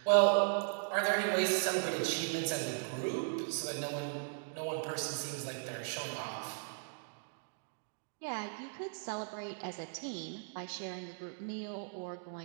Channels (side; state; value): left; silent; digital silence